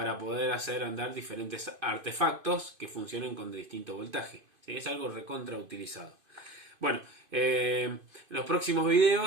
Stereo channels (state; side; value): late; left; 2.5 ms